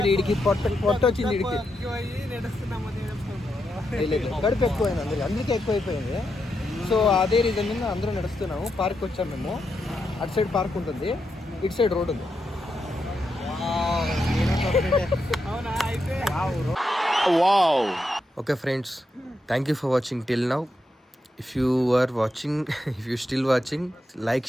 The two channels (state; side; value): normal; both; correlation 0.84